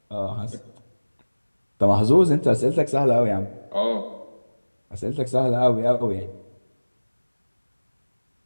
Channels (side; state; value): both; inverted; correlation -1.00